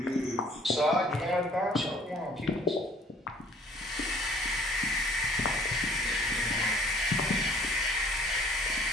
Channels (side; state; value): both; normal; correlation 0.56